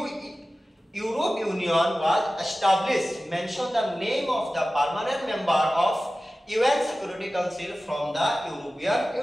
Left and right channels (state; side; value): normal; both; correlation 0.96